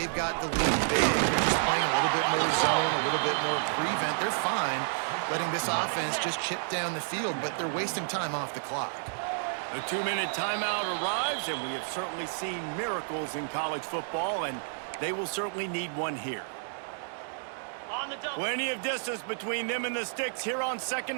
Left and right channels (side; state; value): left; silent; digital silence